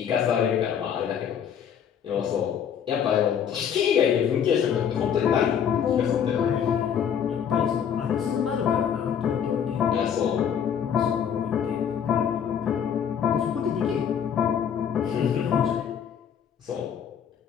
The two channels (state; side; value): quieter; right; 8.2 dB